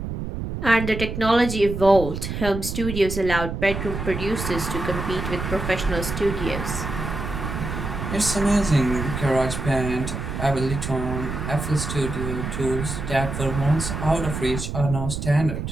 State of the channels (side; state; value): right; noise; rumble, 5 dB below the sound